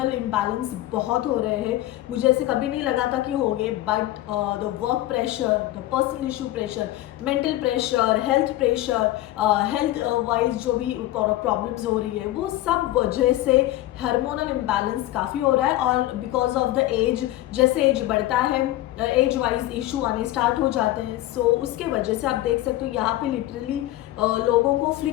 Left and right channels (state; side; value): quieter; right; 15.6 dB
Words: इम्बैलेंस बहुत हो रहे हैं, मुझे ऐसे कभी नहीं लगा था कि होंगे, but the work pressure, the personal issue pressure, mental pressure, health pressure, health wise जो भी प्रॉब्लम्स हो रही है, वो सब वजह से हार्मोनल इम्बैलेंस काफ़ी हो रहा है। और बिकॉज ऑफ द एज, जैसे एज बढ़ता है एज वाइज इशू आने स्टार्ट हो जाते हैं। सो उसके वजह से आप देख सकते हो यहाँ पे लिटरली लोगों को